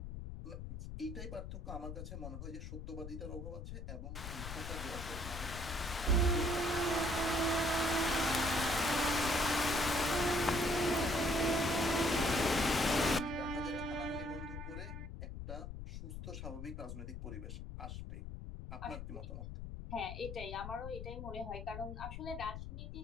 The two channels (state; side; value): noise; left; rumble, 8 dB below the sound